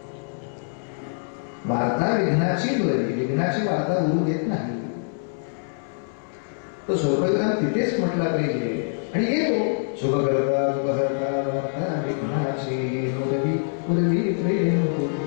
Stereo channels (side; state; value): right; silent; 62 dB below the other